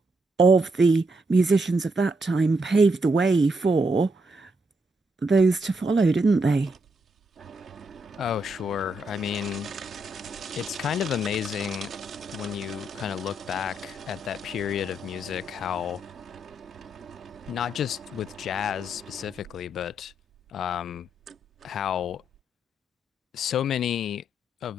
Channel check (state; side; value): normal; both; correlation 0.79